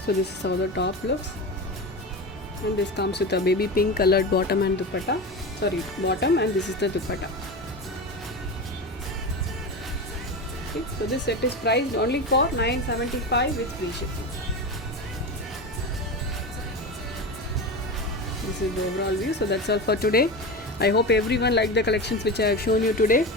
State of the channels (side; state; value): both; normal; correlation 0.24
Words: this is how the top looks, and this comes with a baby pink colored bottom and dupatta. Sorry, bottom, and this is the dupatta. Okay, so this set is priced only for $975 with free shipping. This is the overall view. So that's all for today. I hope everyone liked the collections which I have shown you today.